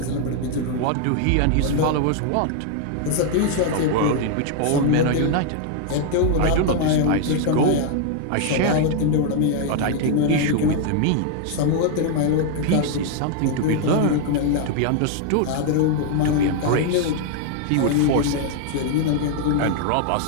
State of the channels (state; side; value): different; both; correlation 0.00